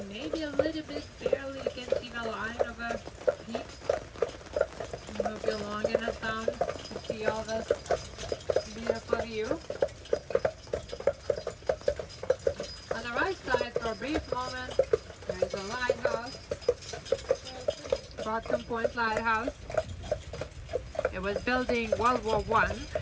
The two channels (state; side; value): identical; both; correlation 1.00